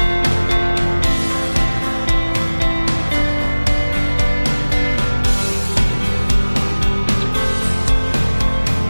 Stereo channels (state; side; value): inverted; both; correlation -1.00